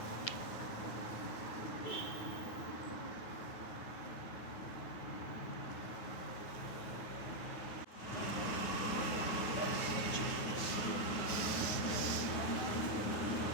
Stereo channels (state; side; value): late; right; 9.4 ms